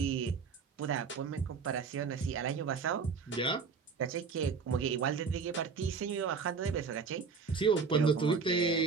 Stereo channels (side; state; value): left; quieter; 5.4 dB